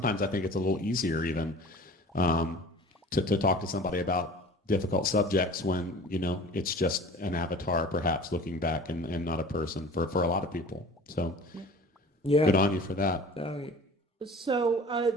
I think it's a little easier even to talk to somebody about difficult subjects when, you know, it's just an avatar perhaps looking back and not a person for a lot of people. So good on you for that. So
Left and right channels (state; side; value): normal; both; correlation 0.43